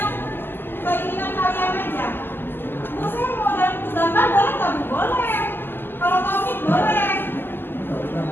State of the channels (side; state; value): right; late; 0.098 ms